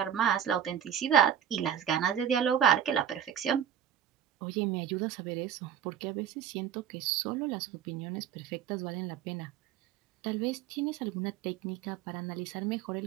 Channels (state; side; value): quieter; left; 9.4 dB